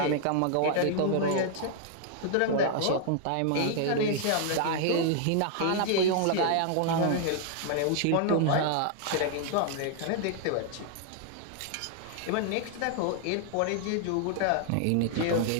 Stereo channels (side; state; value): both; different; correlation 0.00